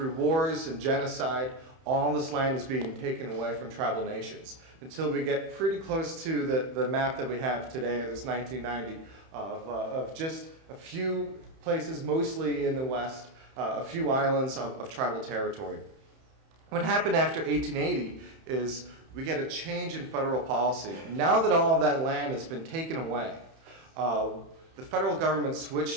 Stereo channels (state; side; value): late; left; 31 ms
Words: wars and genocide, all this land is being taken away from tribal nations. Until we get pretty close to the map that we have today, this 1990, of just a few places, mostly in the West, a few islands of tribal territory. What happened after 1880 is we get a change in federal policy. Now that all of that land has been taken away, the federal government